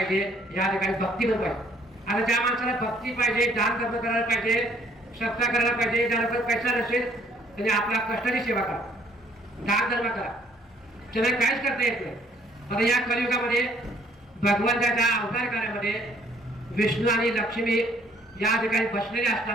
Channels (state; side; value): normal; both; correlation 0.62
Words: या ठिकाणी भक्ती पण पाहिजे. आता ज्या माणसाला भक्ती पाहिजे, दान धर्म करायला पाहिजे, सत्ता करायला पाहिजे, ज्याला पण पैसा नसेल त्याने आपला कष्टाची सेवा करा, दान धर्म करा. त्याला काहीच करता येत नाही. आता या कलियुगामध्ये भगवंताच्या अवतार कार्यामध्ये विष्णू आणि लक्ष्मी या ठिकाणी बसलेले